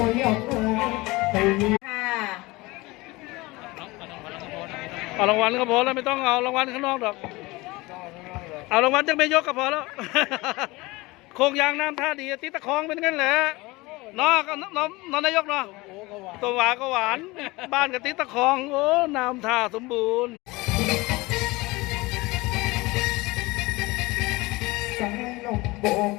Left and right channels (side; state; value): right; quieter; 22.1 dB